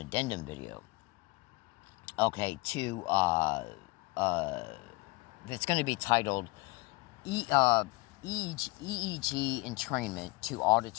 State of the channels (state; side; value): quieter; right; 23.6 dB